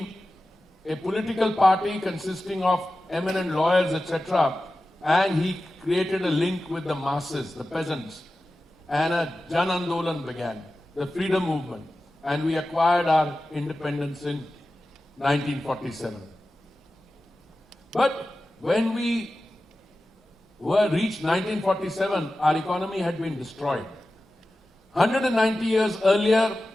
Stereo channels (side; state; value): both; normal; correlation 0.94